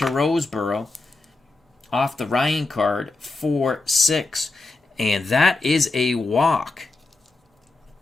Roseboro. Off the Ryan card, 4-6. And that is a walk.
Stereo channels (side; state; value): right; quieter; 3.2 dB